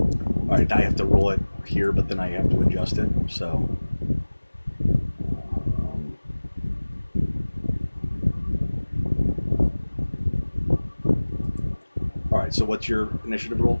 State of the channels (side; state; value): both; inverted; correlation -1.00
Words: All right, I have to roll it here, but then I have to adjust it. So, all right. So, what's your initiative roll?